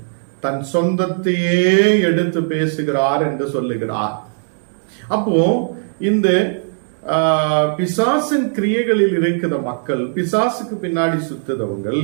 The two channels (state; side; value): silent; left; digital silence